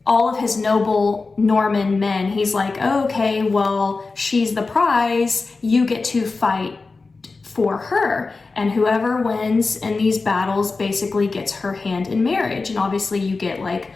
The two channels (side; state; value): right; quieter; 4.0 dB